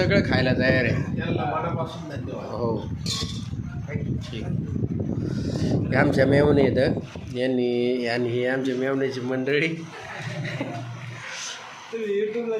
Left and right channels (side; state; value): both; identical; correlation 1.00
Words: खायला तयार आहे. हो ठीक. हे आमच्या मेवणे आहेत यांनी आणि हे आमच्या मेवण्याची मंडळी. यूट्यूबला